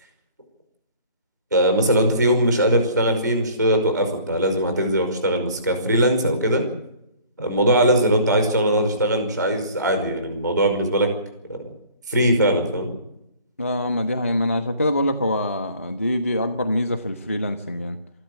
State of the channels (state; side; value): inverted; both; correlation -0.52